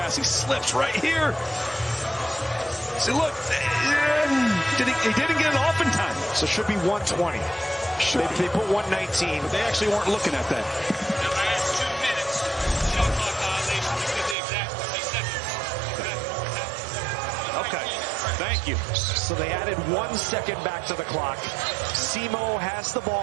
He slips right here. See, look, he didn't get it off in time. So it should be 120. They put 119. But they actually weren't looking at that. Okay, thank you. So they added 1 second back to the clock. Simo has the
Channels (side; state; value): left; drops out; at 14.4 s